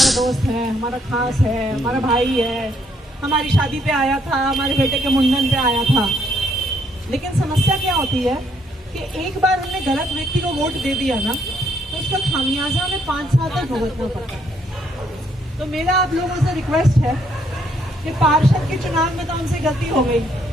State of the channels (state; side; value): normal; both; correlation 0.70